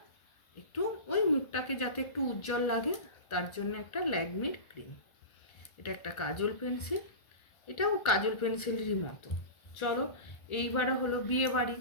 একটু ওই মুখটাকে যাতে একটু উজ্জ্বল লাগে তার জন্য একটা ল্যাকমির ক্রিম। এটা একটা কাজল পেন্সিল, এটাও কাজল পেন্সিলেরই মতো। চলো, এইবারে হলো বিয়ে বাড়ি,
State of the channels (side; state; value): right; late; 1.4 ms